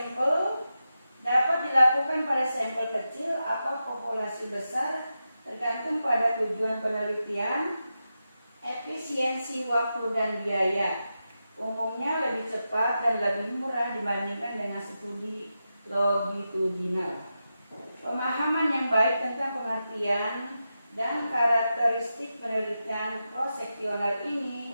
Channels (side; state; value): both; inverted; correlation -0.90